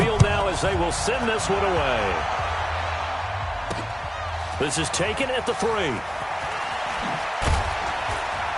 now as they will send this one away. This is taken at the 3.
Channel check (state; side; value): identical; both; correlation 1.00